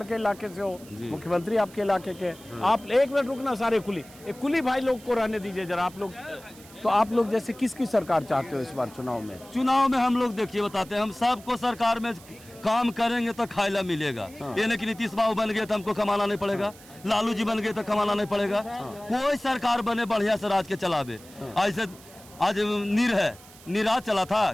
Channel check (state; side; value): noise; right; hiss, 21 dB below the sound